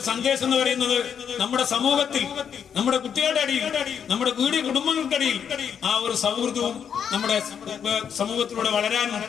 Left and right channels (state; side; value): quieter; right; 7.8 dB